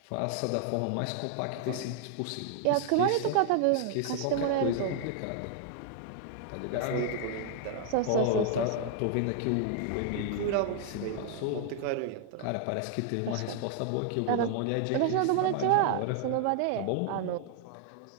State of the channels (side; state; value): both; different; correlation 0.00